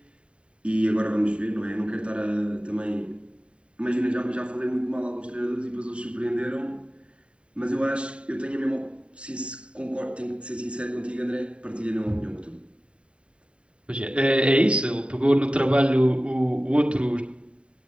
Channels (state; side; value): late; left; 0.057 ms